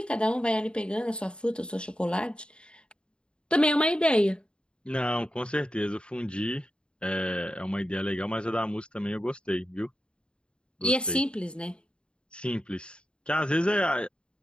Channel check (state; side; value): late; right; 0.053 ms